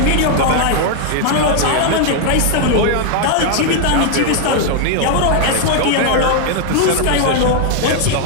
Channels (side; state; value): both; different; correlation 0.00